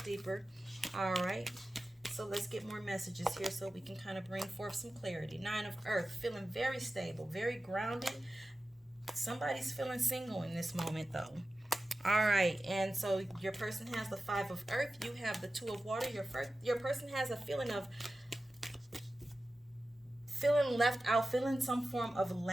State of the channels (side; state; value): both; normal; correlation 0.94